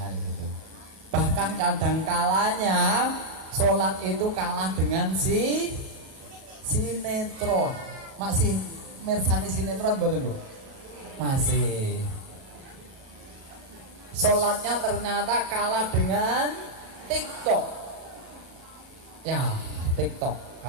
gitu. Bahkan kadang kalanya sholat itu kalah dengan sinetron. Masih mirsani sinetron betul Bu? Masih. Sholatnya ternyata kalah dengan TikTok. Ya, TikTok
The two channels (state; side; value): late; left; 37 ms